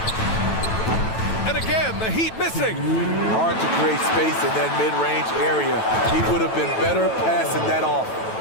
And again, the Heat missing. Hard to create space in that mid-range area. He would have been better passing that off.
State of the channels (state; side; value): late; right; 9.1 ms